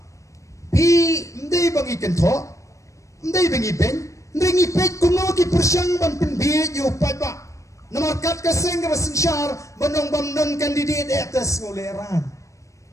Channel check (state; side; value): late; right; 0.15 ms